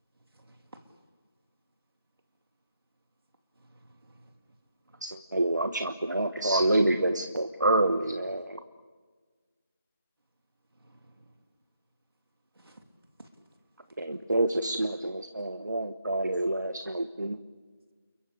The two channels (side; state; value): both; inverted; correlation -0.74